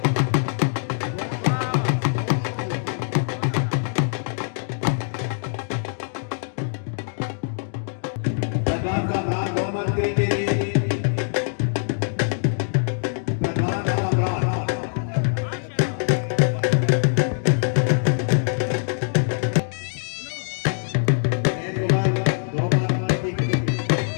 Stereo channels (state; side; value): silent; right; digital silence